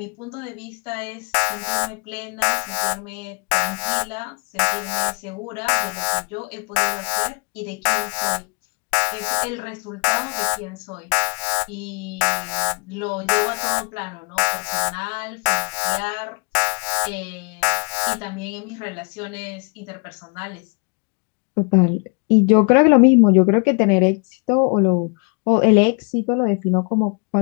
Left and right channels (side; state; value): right; quieter; 34.9 dB